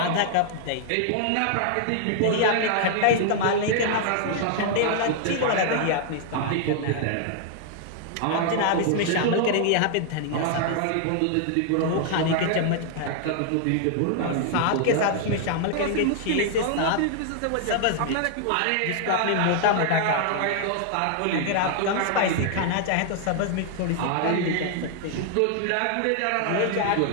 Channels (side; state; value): both; different; correlation -0.01